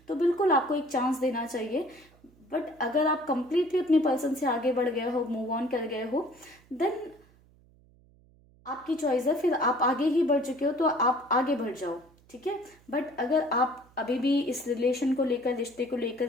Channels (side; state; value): right; noise; hum, 29 dB below the sound